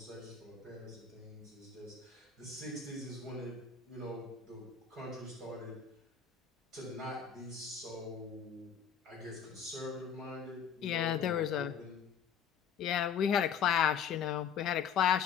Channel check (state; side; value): quieter; right; 7.5 dB